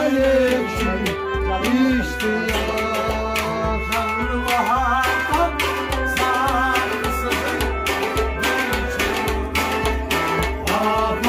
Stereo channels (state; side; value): identical; both; correlation 1.00